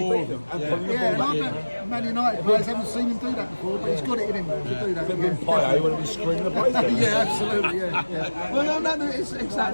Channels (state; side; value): inverted; both; correlation -1.00